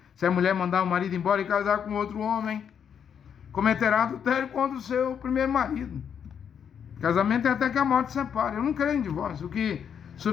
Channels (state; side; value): quieter; right; 7.9 dB